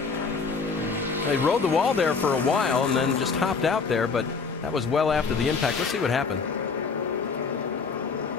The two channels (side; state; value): right; quieter; 5.0 dB